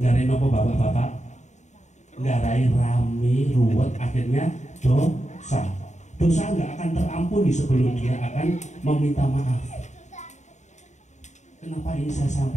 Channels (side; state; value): right; late; 0.34 ms